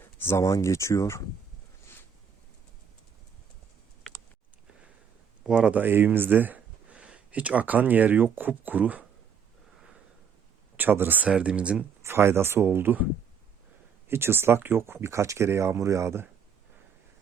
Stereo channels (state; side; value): quieter; left; 6.9 dB